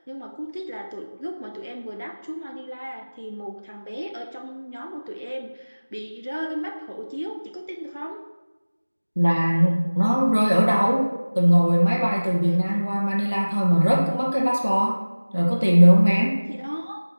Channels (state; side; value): inverted; both; correlation -1.00